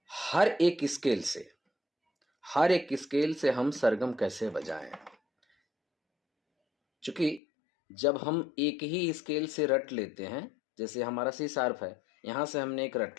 हर एक स्केल से हम सरगम कैसे बजाएं। क्योंकि जब हम एक ही स्केल से रट लेते हैं, जैसे हमारा सी शार्प है, यहाँ से हमने एक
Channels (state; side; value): drops out; right; at 7.4 s